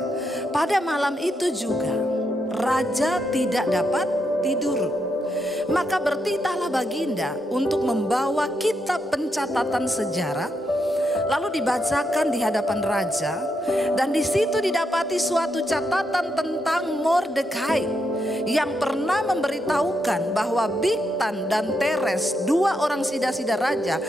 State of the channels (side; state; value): both; normal; correlation 0.81